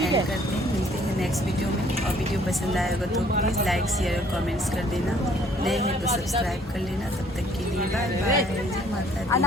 हैं। मिलते हैं नेक्स्ट वीडियो में। और वीडियो पसंद आएगा तो प्लीज़ लाइक शेयर और कमेंट्स कर देना। नए हैं तो सब्सक्राइब कर लेना। तब तक के लिए बाय बाय। जय माता दी।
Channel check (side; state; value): both; normal; correlation 0.60